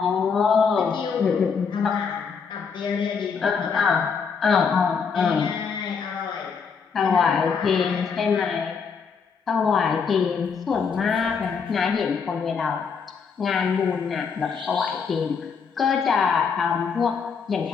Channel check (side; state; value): right; quieter; 5.9 dB